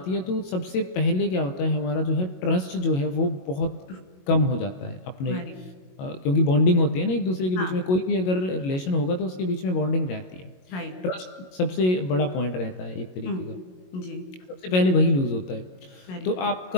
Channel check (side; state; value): right; late; 22 ms